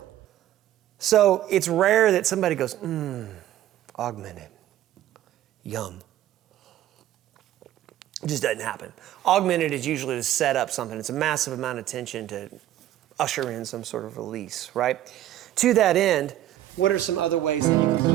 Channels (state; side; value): quieter; left; 13.0 dB